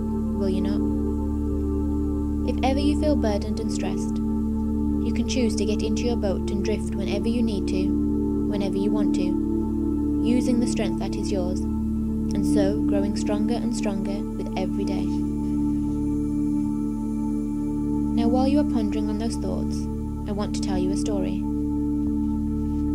you not? If ever you feel burdened and stressed, you can choose to get into your boat and drift whenever you need to, whenever you want to, using the strength that is yours, and so growing stronger and stronger with every day. Now, while you are pondering on those thoughts, I want to tell you a story.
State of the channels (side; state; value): both; identical; correlation 1.00